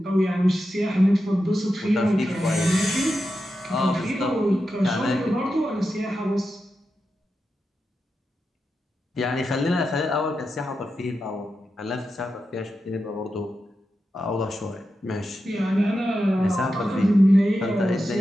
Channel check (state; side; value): normal; both; correlation 0.89